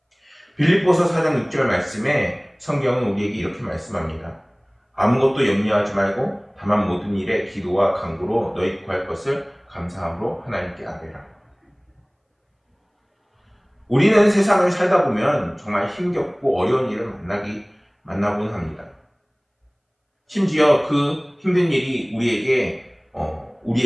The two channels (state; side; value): identical; both; correlation 1.00